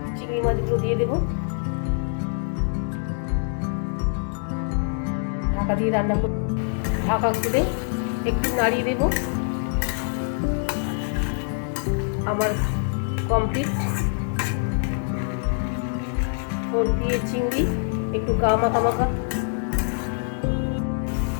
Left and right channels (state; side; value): silent; right; 62 dB below the other